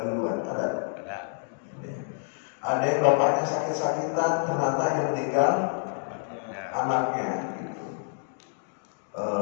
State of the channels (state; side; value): silent; right; 59 dB below the other